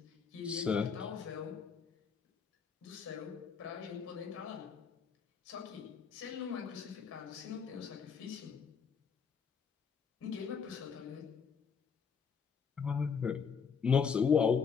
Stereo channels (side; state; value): right; quieter; 6.2 dB